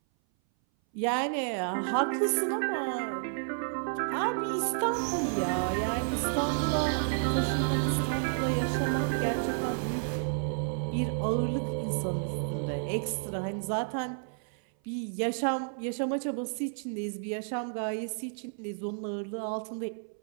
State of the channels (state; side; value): silent; left; 57 dB below the other